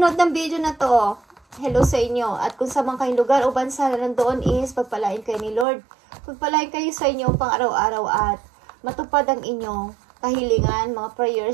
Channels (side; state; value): left; drops out; at 5.7 s